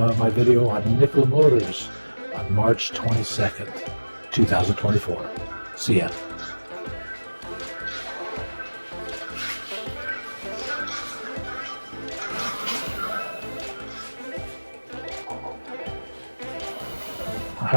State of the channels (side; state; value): both; inverted; correlation -1.00